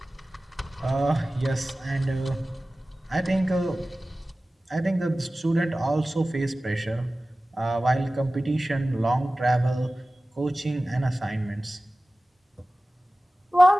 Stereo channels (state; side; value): normal; both; correlation 0.97